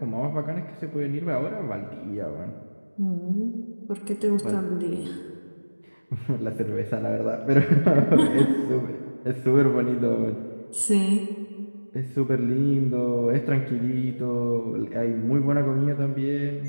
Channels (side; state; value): both; inverted; correlation -1.00